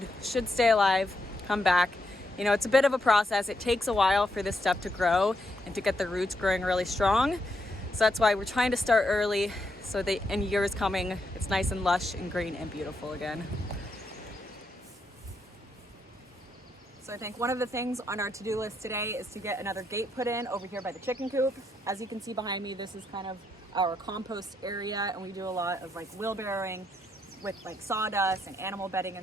should stay alive, come back. You know, it's a bit of a process. It takes a while for this stuff to grow and to get the roots growing really strong. So that's why we're trying to start early so that in years coming, it's nice and lush and green and beautiful again. So I think one of the things on our to-do list today is to get another gate put in over here by the chicken coop. As you can see behind me, this is kind of our compost area, and we do a lot of like wheelbarrowing with like sawdust and animal bedding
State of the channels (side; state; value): both; normal; correlation 0.79